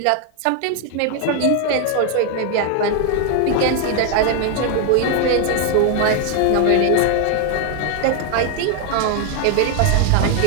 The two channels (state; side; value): different; both; correlation 0.00